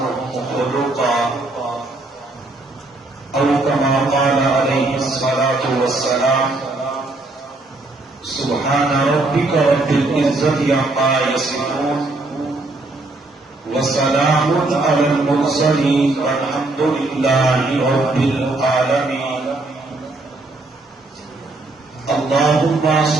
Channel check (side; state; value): left; quieter; 3.0 dB